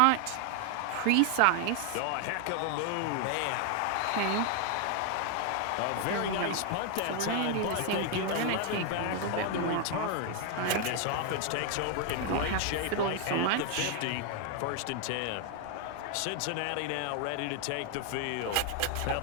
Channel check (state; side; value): different; both; correlation 0.01